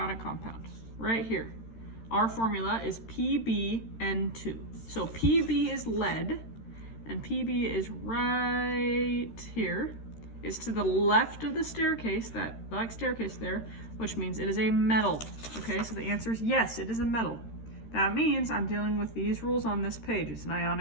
compound. Right here. Our formula is PbN2. So Pb is lead, and Pb is right here. It's to the left of the staircase, that black staircase there, which means it is a metal. Okay, so the answer is yes, it is a metal. That means I'm dealing with these rules on this page. It's an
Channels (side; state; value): right; late; 13 ms